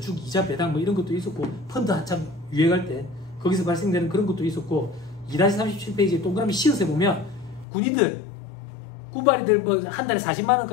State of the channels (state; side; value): drops out; right; at 7.7 s